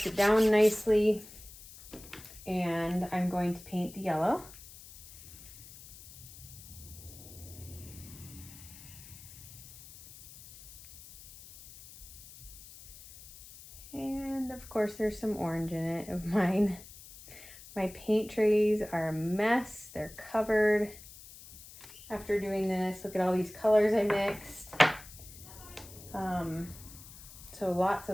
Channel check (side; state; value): left; noise; hiss, 18 dB below the sound